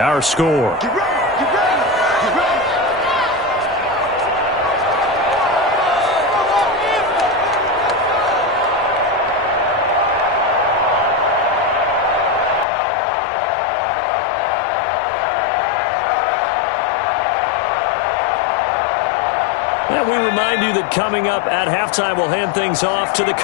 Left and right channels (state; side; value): drops out; right; at 12.7 s